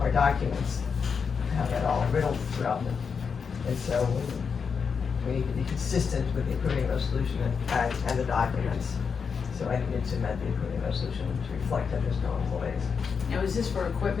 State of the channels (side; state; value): right; quieter; 6.0 dB